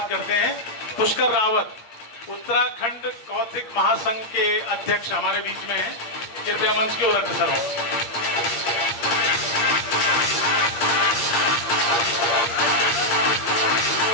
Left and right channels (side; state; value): right; late; 8.8 ms